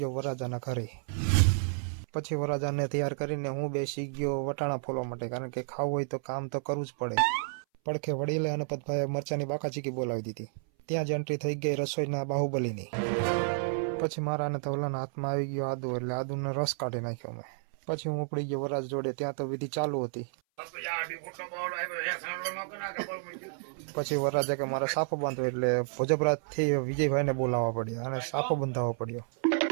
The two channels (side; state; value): left; silent; 57 dB below the other